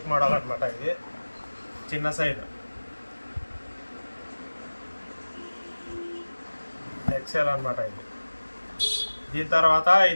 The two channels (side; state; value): both; inverted; correlation -1.00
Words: మోడల్ అనమాట. ఇది చిన్న సైజు ఎక్సెల్ అనమాట. ఇది దీని తర్వాత